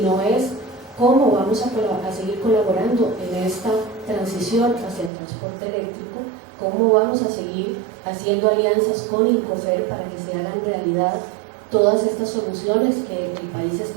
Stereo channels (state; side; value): drops out; left; at 5.1 s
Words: es cómo vamos a seguir colaborando en esta transición hacia el transporte eléctrico, cómo vamos a seguir haciendo alianzas con Incofer para que se hagan realidad todas estas soluciones que el país